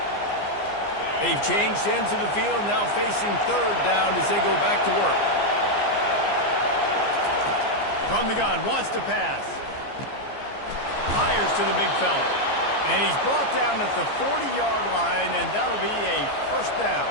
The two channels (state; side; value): late; right; 15 ms